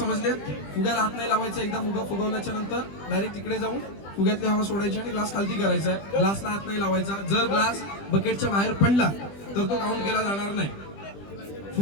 फुग्याला हात नाही लावायचा. एकदा फुगा फुगवल्याच्या नंतर डायरेक्ट तिकडे जाऊन फुग्यातली हवा सोडायची आणि ग्लास खालती करायचा आहे. ग्लासला हात नाही लावायचा. जर ग्लास बकेटच्या बाहेर पडला तर तो काउंट केला जाणार नाही.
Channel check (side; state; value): right; late; 20 ms